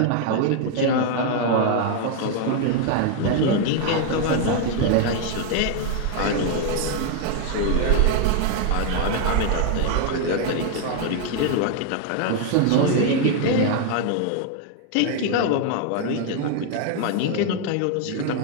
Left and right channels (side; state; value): both; different; correlation 0.00